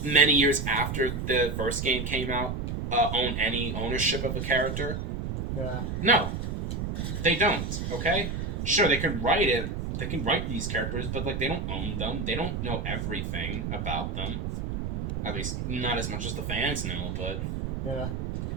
many years after the first game came out own any ownership of a character? Yeah. No, they don't. Okay, sure, they can write it. They can write these characters, but like they don't own them. They don't know everything about them. At least not as much as the fans know. But Yeah.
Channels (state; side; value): noise; right; rumble, 3 dB below the sound